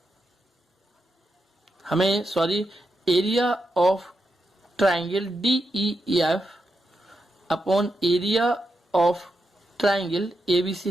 area of triangle DEF upon area of triangle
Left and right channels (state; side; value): normal; both; correlation 0.85